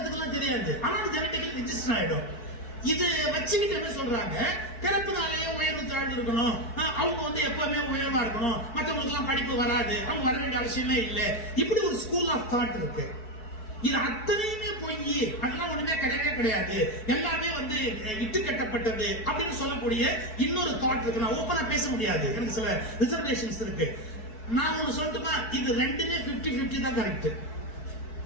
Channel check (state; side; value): late; right; 4.6 ms